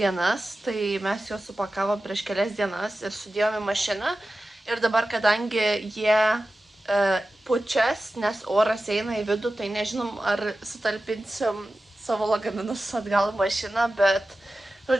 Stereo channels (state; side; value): normal; both; correlation 0.94